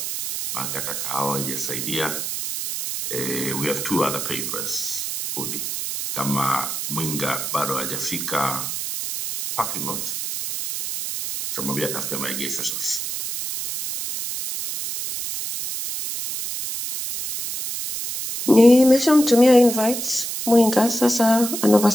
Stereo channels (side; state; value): right; noise; hiss, 4 dB below the sound